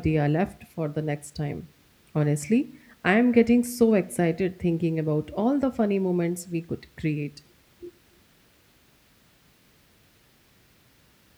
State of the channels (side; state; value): both; identical; correlation 1.00